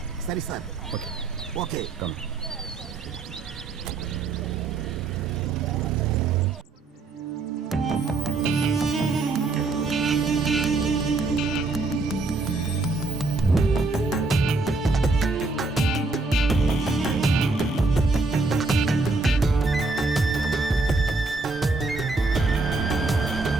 சரி சார். Okay okay. കം.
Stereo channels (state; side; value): quieter; left; 3.6 dB